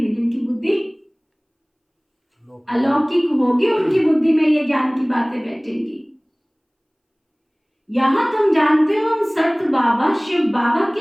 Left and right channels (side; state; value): both; identical; correlation 1.00